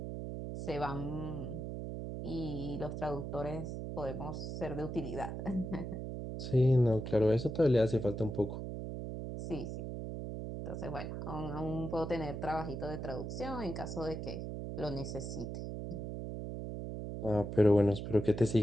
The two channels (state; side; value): noise; right; hum, 5 dB below the sound